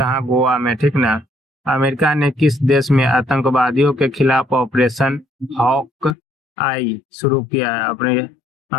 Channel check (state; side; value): drops out; right; at 6.2 s